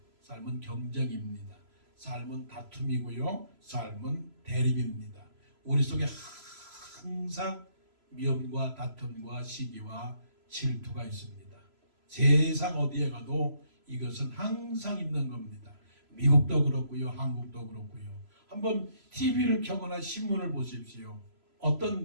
경쟁입니다. 삶은 다툼이고요. 삶은 대립입니다. 우리 속에 항상 미움과 다툼과 시기와 질투가 있습니다. 세상 어디에 가도 이것은 항상 있는 겁니다. 미국도 그렇고요, 한국도 그렇고요. 한번 TV를 켜거나 신문을 보십시오.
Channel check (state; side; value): late; left; 3.0 ms